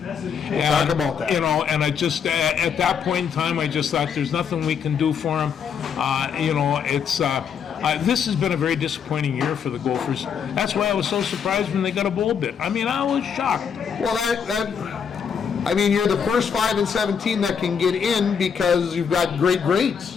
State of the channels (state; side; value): quieter; right; 7.1 dB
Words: We'll talk about that. And I just at that point in time, I just thought there's nothing we can do for them. This has been a very disappointing year for the Gophers. That's why I was so surprised when they got a bowl bid. I mean, I was shocked. Well, you're the first 5 and 17 that can get in because you've got great grades.